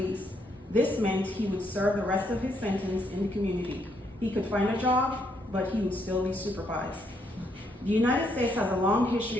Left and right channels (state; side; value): normal; both; correlation 0.74